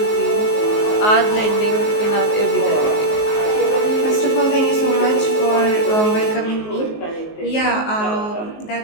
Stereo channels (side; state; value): right; late; 19 ms